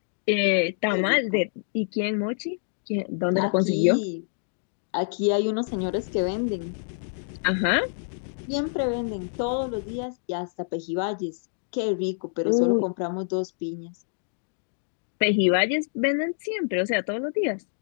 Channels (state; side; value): silent; right; digital silence